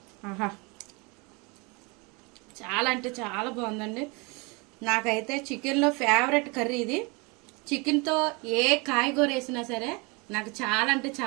ఆహా, చాలా అంటే చాలా బాగుందండి. నాకైతే చికెన్లో ఫేవరెట్ కర్రీ ఇది. చికెన్తో ఏ కాయగూర వేసినా సరే నాకు చాలా అంటే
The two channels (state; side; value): quieter; left; 28.7 dB